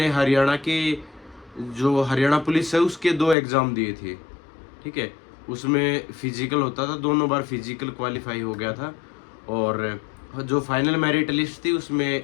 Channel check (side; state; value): right; drops out; at 3.4 s